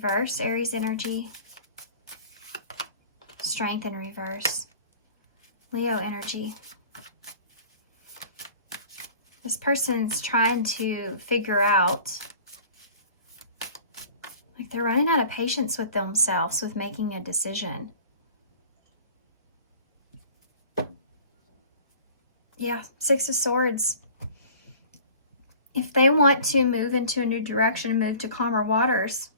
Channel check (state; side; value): inverted; both; correlation -0.45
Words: Aries energy. Strength in reverse, Leo energy. This person's trying to figure out, like they're running out of patience with themselves with making a decision. Yeah, Six of Swords. If they want to move into a new direction and move to calmer waters,